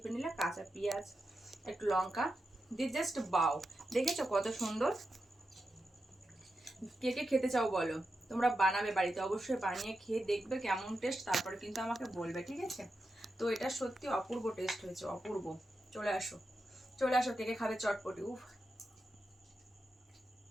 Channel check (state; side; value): normal; both; correlation 0.89